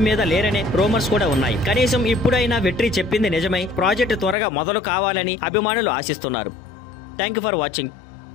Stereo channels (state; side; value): drops out; right; at 4.4 s